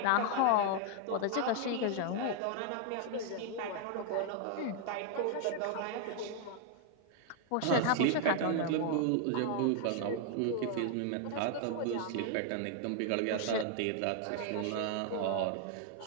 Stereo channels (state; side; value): different; both; correlation 0.00